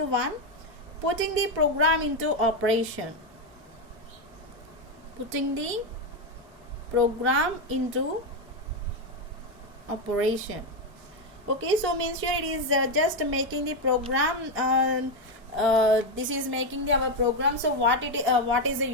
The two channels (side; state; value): both; normal; correlation 0.07